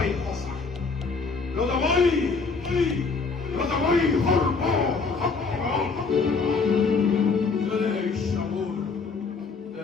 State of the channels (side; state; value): right; quieter; 4.6 dB